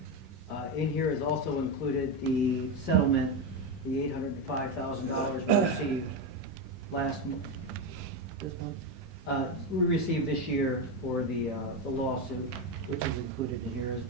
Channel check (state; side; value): normal; both; correlation 0.12